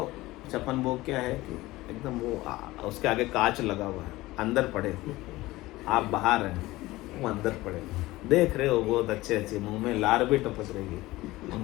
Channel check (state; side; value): quieter; right; 18.6 dB